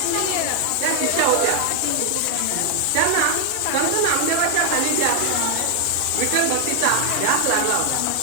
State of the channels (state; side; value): different; both; correlation 0.00